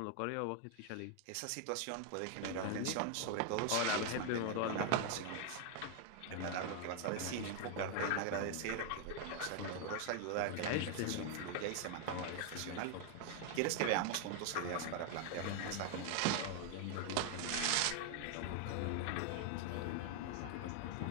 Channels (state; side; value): different; both; correlation 0.00